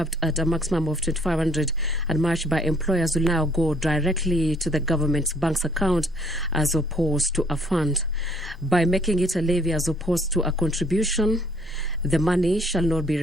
at a maximum of 2,500 and matched by employers, will now go directly to the government's bank's account as opposed to a fund. By making it a levy as opposed to a contribution, the money shall not be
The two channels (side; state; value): both; normal; correlation 0.62